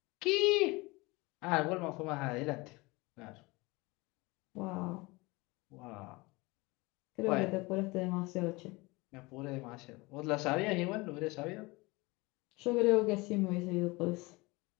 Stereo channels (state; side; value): quieter; right; 23.9 dB